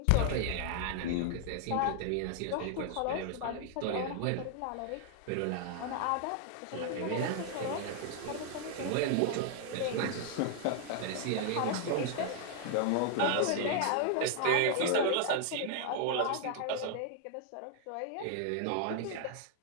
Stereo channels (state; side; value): different; both; correlation 0.00